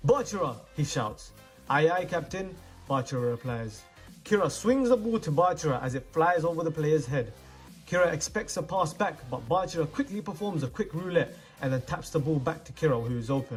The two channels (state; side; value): identical; both; correlation 1.00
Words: "Bachira!" he shouts. "Aye aye, captain," Bachira replies. Kira swings the ball to Bachira as it flies over the player's head. Kira expects a pass back, but Bachira quickly performs a quick roulette and then taps the ball back to Kira, who is